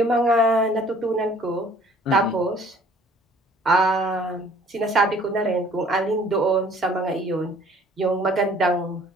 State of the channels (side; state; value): both; normal; correlation 0.55